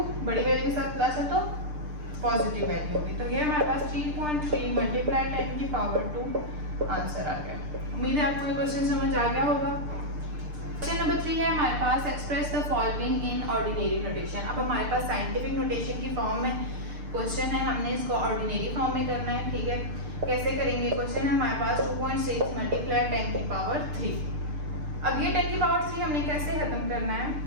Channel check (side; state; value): left; late; 6.7 ms